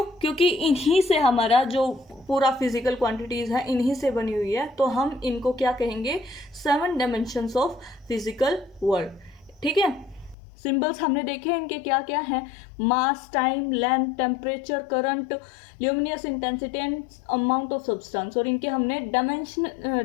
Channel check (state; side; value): drops out; right; at 10.4 s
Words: क्योंकि इन्हीं से हमारा जो पूरा फिजिकल क्वांटिटीज है इन्हीं से बनी हुई है, तो हम इनको क्या कहेंगे, 7 डायमेंशंस ऑफ फिजिकल वर्ल्ड। ठीक है, सिंबल्स हमने देखे इनके क्या क्या हैं, mass, time, length, temperature, current, luminous intensity and amount of substance. और इनके हमने